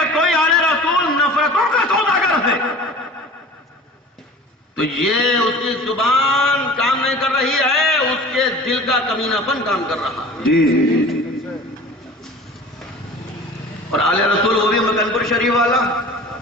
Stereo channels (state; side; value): normal; both; correlation 0.41